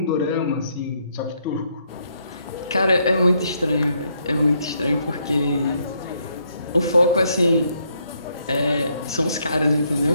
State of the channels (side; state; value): both; inverted; correlation -0.74